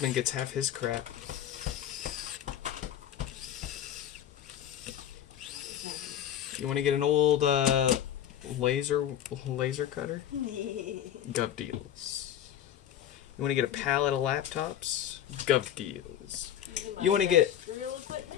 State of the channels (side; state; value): right; quieter; 10.5 dB